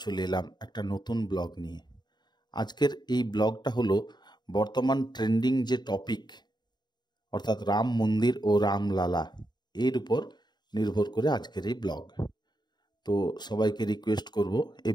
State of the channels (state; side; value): late; right; 0.21 ms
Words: চলে এলাম একটা নতুন ব্লগ নিয়ে। আজকের এই ব্লগটা হলো বর্তমান ট্রেন্ডিং যে টপিক, অর্থাৎ রাম মন্দির ও রামলালা, এর উপর নির্ভর করে আজকের এই ব্লগ। তো সবাইকে রিকোয়েস্ট করব, এই